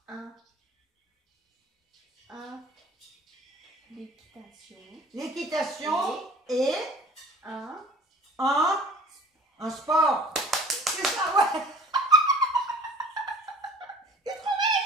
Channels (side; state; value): both; normal; correlation 0.47